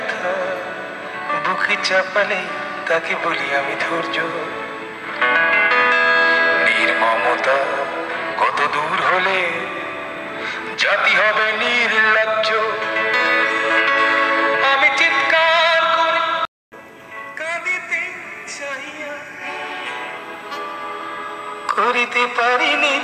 বুকে চাপালে তাকে বলি আমি ধৈর্য। নির্মমতা কত দূর হলে জাতি হবে নির্লজ্জ। আমি চিৎকার করে কাঁদিতে চাহিয়া করিতে পারিনি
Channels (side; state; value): both; identical; correlation 1.00